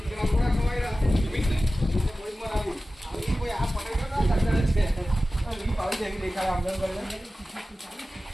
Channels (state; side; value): normal; both; correlation 0.95